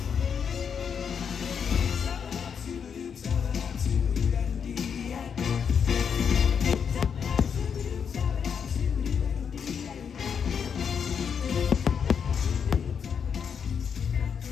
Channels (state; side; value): quieter; right; 7.0 dB